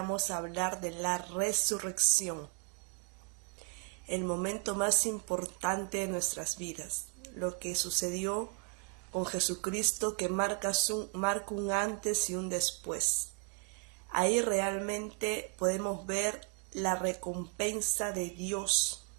a hablar de la resurrección, el momento más importante de nuestras vidas, lo que sucedió con Jesucristo que marca un antes y un después. Ahí realmente podemos ver la recompensa de Dios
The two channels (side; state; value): left; quieter; 38.1 dB